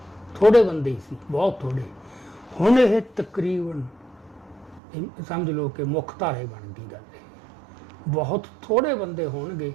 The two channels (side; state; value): left; drops out; at 4.8 s